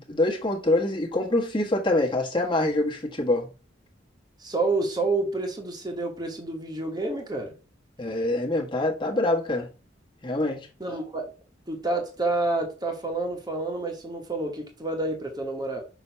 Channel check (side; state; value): both; normal; correlation 0.53